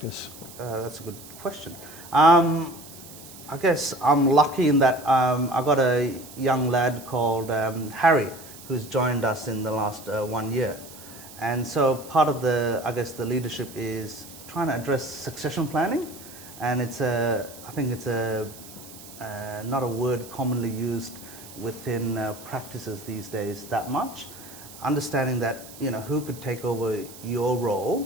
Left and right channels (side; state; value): right; noise; hiss, 17 dB below the sound